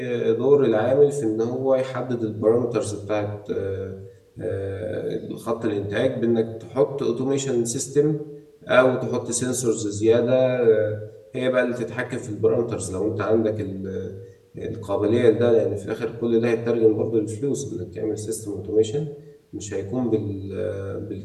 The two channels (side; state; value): both; identical; correlation 1.00